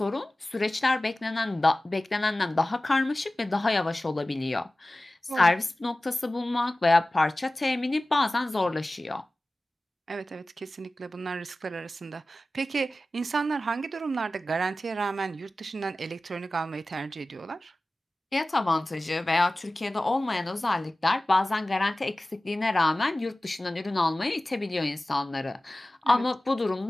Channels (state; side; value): normal; both; correlation 0.96